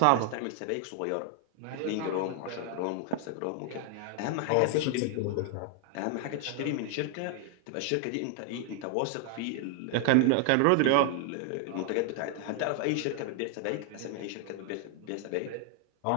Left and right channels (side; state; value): both; different; correlation 0.00